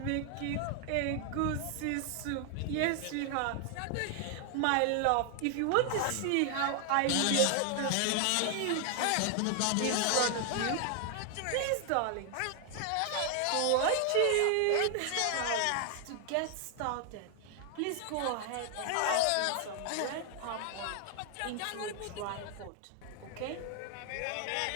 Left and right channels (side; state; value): both; different; correlation 0.00